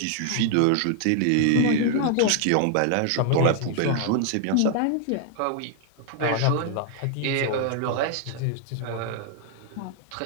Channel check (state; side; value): different; both; correlation 0.00